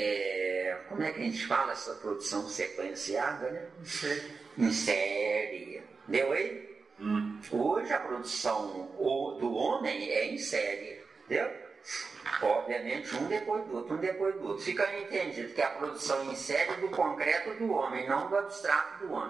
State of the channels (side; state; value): left; quieter; 4.6 dB